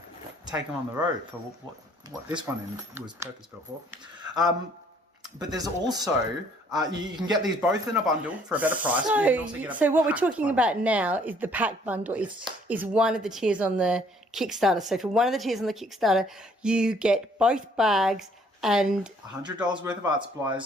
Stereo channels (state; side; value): normal; both; correlation 0.61